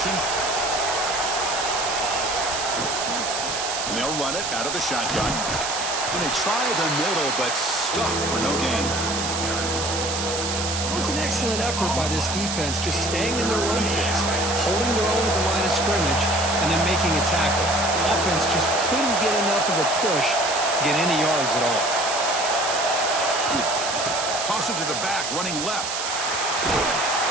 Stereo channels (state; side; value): noise; right; hiss, 3 dB below the sound